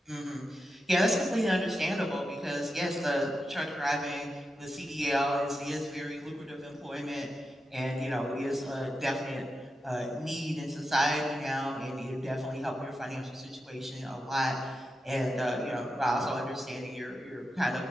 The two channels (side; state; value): both; normal; correlation 0.89